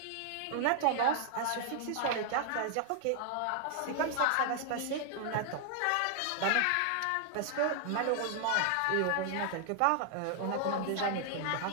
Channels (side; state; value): both; different; correlation 0.00